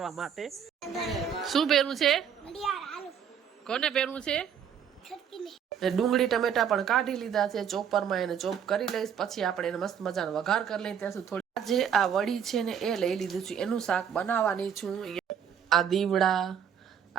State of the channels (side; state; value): left; quieter; 8.1 dB